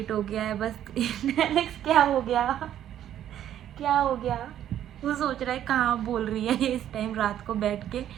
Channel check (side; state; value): left; quieter; 11.0 dB